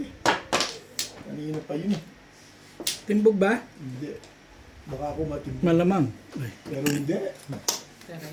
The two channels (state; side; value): identical; both; correlation 1.00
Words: eh. Kanina pa yun eh. Timbog ba? Hindi. Baka ako matimbog. Malamang. Ay, Pero hindi. Pero